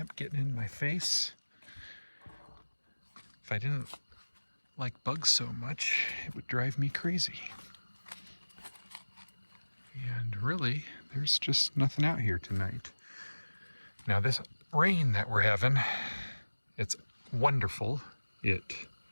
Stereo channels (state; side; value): inverted; both; correlation -1.00